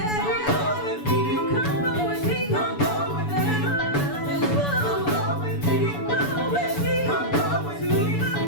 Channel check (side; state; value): right; late; 7.0 ms